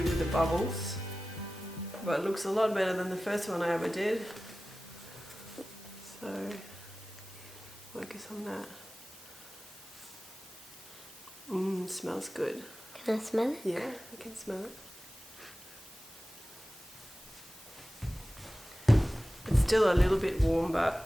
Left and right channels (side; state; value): both; normal; correlation 0.96